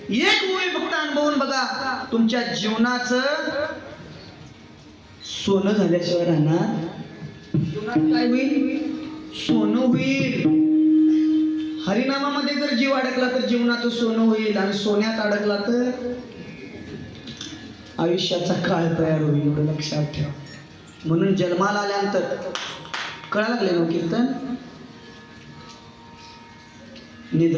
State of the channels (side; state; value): both; identical; correlation 1.00